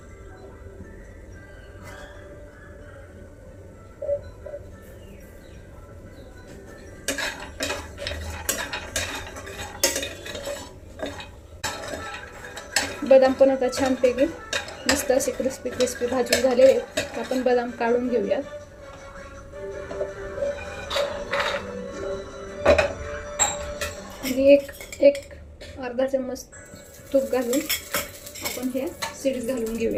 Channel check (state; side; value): identical; both; correlation 1.00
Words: बदाम पण आता छानपैकी मस्त असे क्रिस्पी क्रिस्पी भाजून झाले. आपण बदाम काढून घेऊयात. आणि एक अर्धा चम्मच तूप घालून आपण हे सीड्स घालून